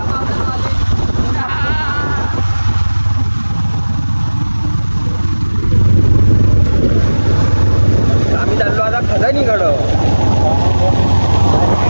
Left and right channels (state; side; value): inverted; both; correlation -1.00